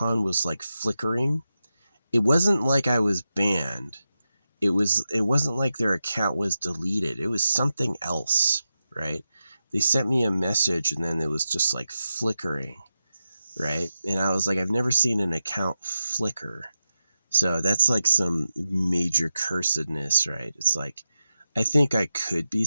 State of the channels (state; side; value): inverted; both; correlation -0.91